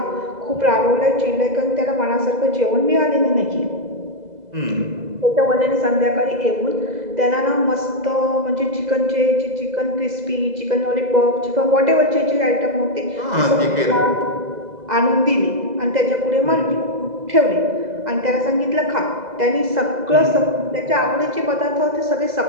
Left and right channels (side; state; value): left; late; 2.0 ms